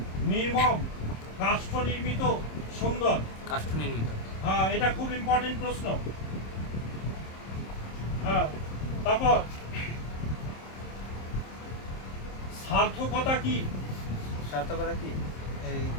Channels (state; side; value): late; right; 26 ms